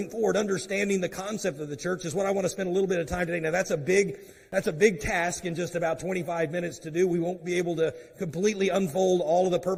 forward, understanding the concept of the church is what I want to spend a little bit of time today. Now that's a big task in just about 25 minutes to do. We won't be able to completely unfold all of the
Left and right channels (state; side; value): identical; both; correlation 1.00